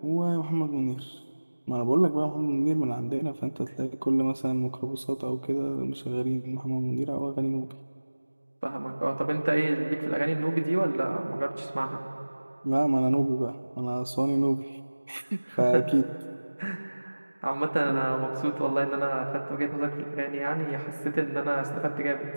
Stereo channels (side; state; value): both; inverted; correlation -1.00